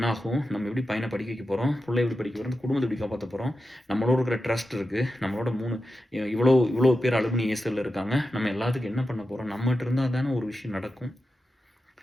ஆகும்? நம்ம எப்படி பையன படிக்க வைக்க போறோம்? புள்ளைய எப்படி படிக்க போறோம்? குடும்பத்த எப்படி காப்பாத்த போறோம்? நம்மளோட இருக்கிற ட்ரஸ்ட் இருக்கு. நம்மளோட 3 இவ்வளோ இவ்வளோ பேர் அலுமினி ஏர்செல்ல இருக்காங்க. நம்ம எல்லாத்துக்கும் என்ன பண்ண போறோம்? நம்மட்ட இருந்தா தானே ஒரு விஷயம் நடக்கும்.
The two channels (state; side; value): normal; both; correlation 0.90